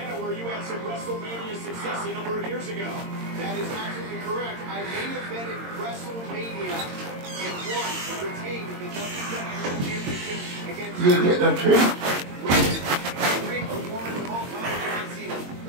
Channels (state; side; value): late; left; 22 ms